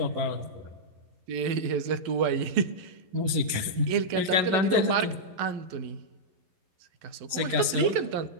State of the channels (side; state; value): left; late; 11 ms